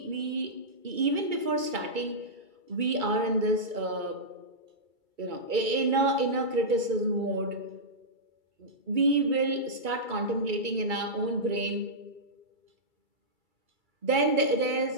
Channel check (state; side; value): late; left; 2.3 ms